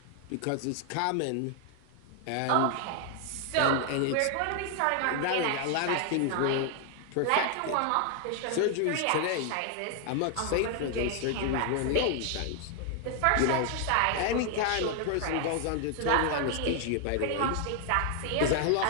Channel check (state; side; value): different; both; correlation 0.00